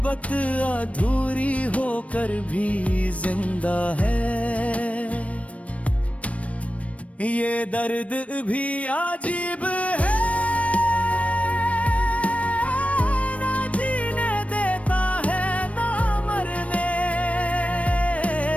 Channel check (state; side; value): late; right; 0.065 ms